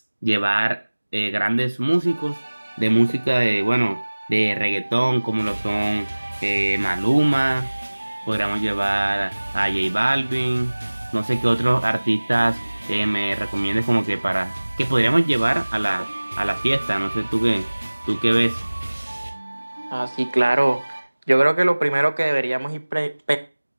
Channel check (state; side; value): inverted; both; correlation -1.00